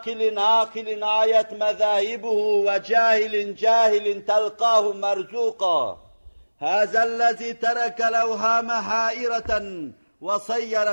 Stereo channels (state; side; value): inverted; both; correlation -1.00